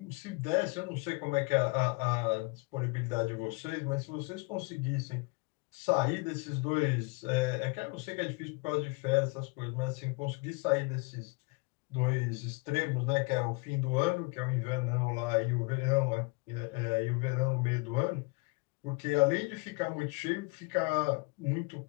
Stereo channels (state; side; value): quieter; right; 28.3 dB